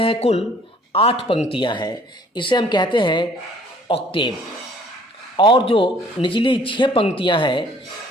है कुल 8 पंक्तियां हैं, इसे हम कहते हैं ऑक्टेव। और जो निचली 6 पंक्तियां हैं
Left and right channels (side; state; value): both; normal; correlation 0.57